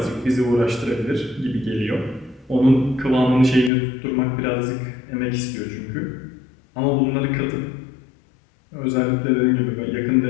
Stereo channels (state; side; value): drops out; right; at 3.7 s